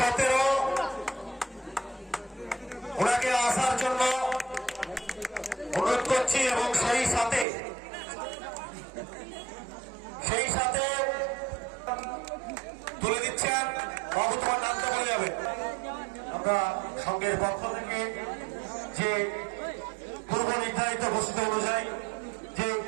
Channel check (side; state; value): left; drops out; at 7.5 s